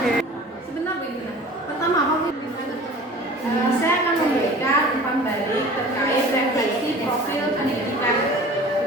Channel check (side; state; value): both; normal; correlation 0.43